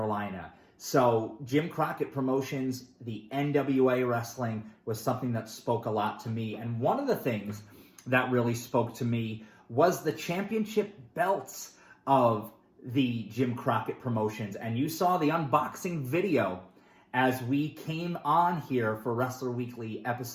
So Jim Crockett Promotions, the NWA wrestling, was something that spoke a lot to me. And one of the things that really spoke to me was the championship belts of the Jim Crockett Promotions. And you saw the unboxing video as we came on here for Wrestler Weekly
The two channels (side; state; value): both; identical; correlation 1.00